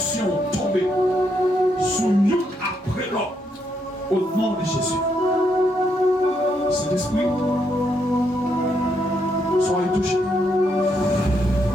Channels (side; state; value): both; normal; correlation 0.77